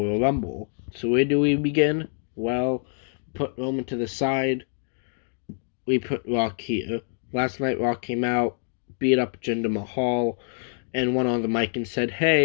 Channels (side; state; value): right; silent; 61 dB below the other